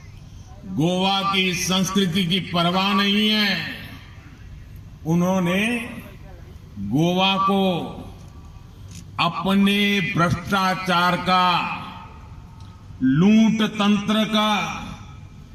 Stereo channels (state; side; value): identical; both; correlation 1.00